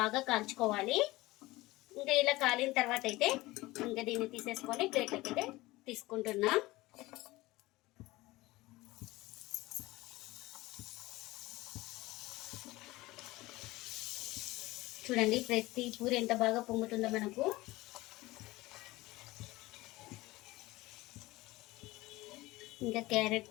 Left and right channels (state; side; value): quieter; right; 19.6 dB